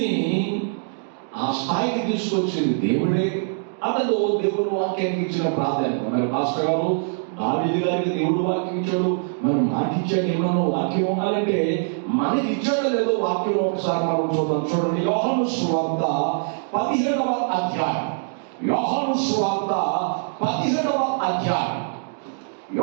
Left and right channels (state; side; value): silent; left; digital silence